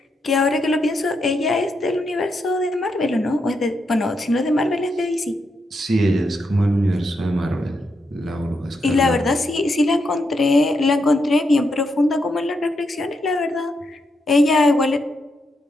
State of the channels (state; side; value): normal; both; correlation 0.82